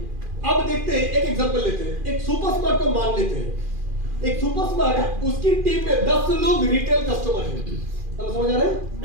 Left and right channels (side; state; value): left; late; 2.4 ms